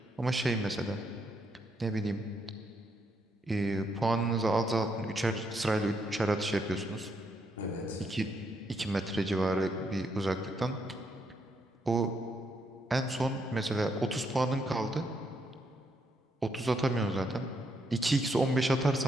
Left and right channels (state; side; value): normal; both; correlation 0.76